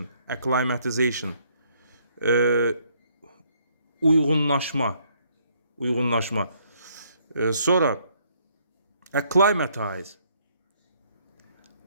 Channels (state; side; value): inverted; both; correlation -0.68